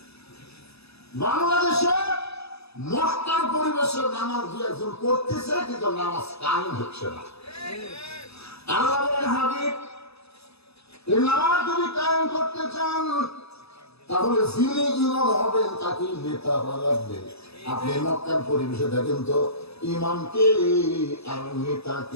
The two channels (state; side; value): late; right; 0.79 ms